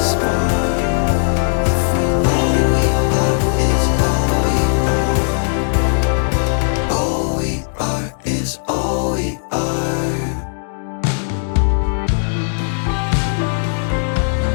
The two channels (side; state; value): right; silent; digital silence